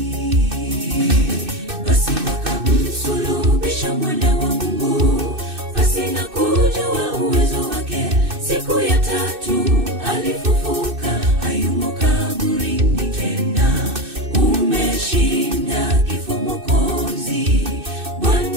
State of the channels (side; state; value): left; late; 2.6 ms